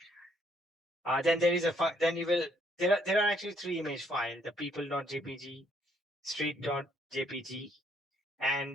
Then there is then there are actually 3 image files: the people.jpg, street.jpg,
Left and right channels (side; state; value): both; normal; correlation 0.68